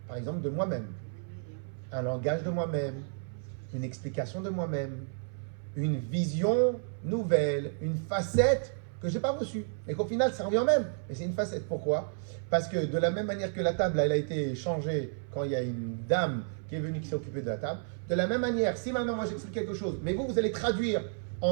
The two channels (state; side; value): silent; left; 57 dB below the other